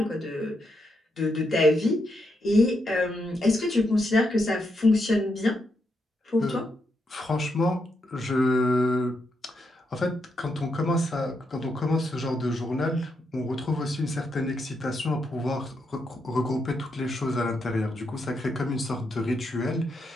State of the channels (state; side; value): normal; both; correlation 0.81